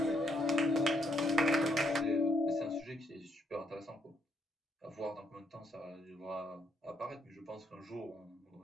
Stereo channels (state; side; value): normal; both; correlation 0.74